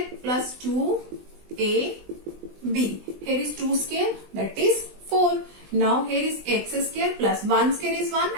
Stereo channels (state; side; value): late; left; 20 ms